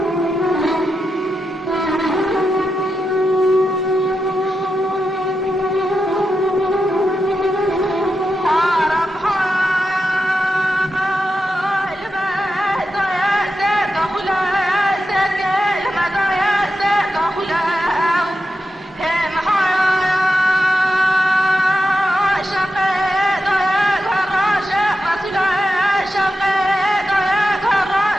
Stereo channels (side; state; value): both; normal; correlation 0.88